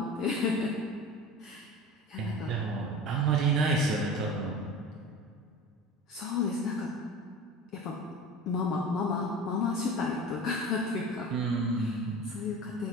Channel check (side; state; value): both; normal; correlation 0.35